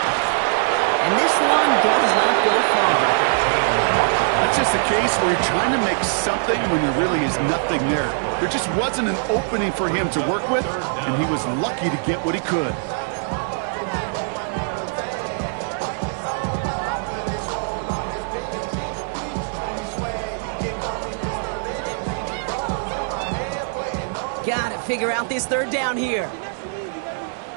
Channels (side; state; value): left; silent; 64 dB below the other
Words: And this one does not go far. That's just a case where you're trying to make something when there really is nothing there. There just wasn't an opening for him to work with, and he was lucky to get what he could. Gotta figure out this third down here.